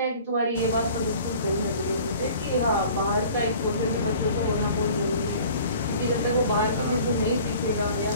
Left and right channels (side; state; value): both; inverted; correlation -0.47